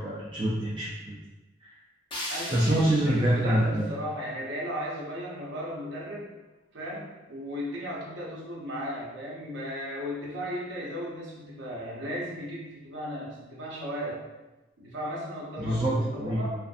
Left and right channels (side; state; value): both; normal; correlation 0.67